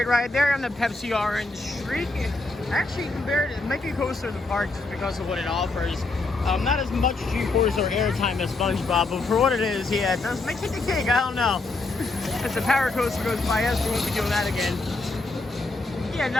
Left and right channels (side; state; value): right; quieter; 3.3 dB